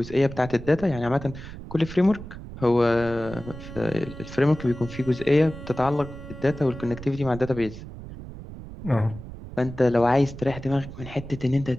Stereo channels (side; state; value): right; noise; rumble, 13 dB below the sound